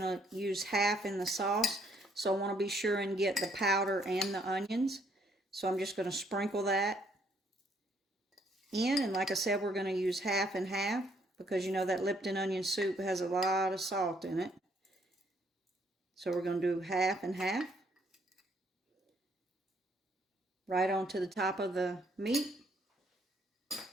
to use half in the sauce. So I want to be sure and get the powder and the onions. So I'm just going to sprinkle that in, and like I said, we're going to use half and half because you know that Lipton onion soup has a lot of salt in it. So we're going to do half and half right onto the top of the meat.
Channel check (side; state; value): both; normal; correlation 0.68